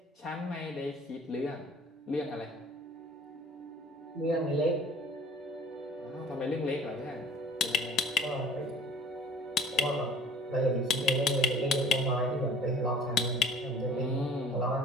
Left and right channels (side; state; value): both; normal; correlation 0.49